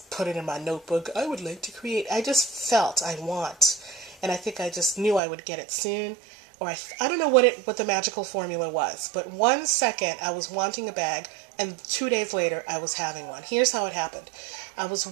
put it in my notebook. I would like to create. I just felt I want. And I think I just knew I would get it soon. Or I don't know what the magical formula was. But 1 second I was wanting a bag, and 2 days later I was having one. Here's how it happened. I was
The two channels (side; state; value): left; drops out; at 5.2 s